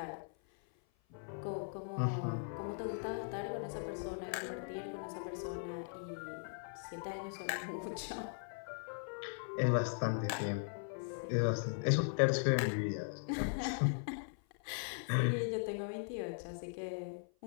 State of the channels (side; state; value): right; silent; 52 dB below the other